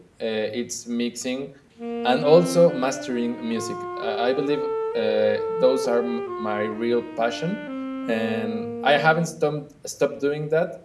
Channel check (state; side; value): identical; both; correlation 1.00